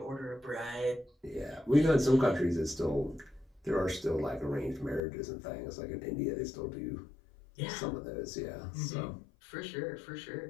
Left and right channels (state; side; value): drops out; right; at 5.0 s